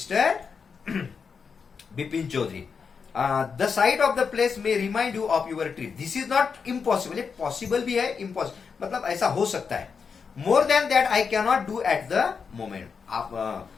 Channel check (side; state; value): right; quieter; 5.8 dB